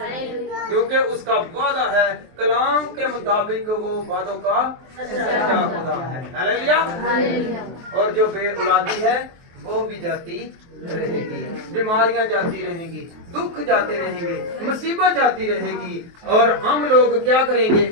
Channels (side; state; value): left; late; 23 ms